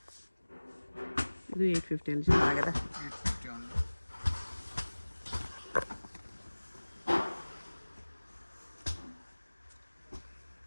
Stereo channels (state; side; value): inverted; both; correlation -1.00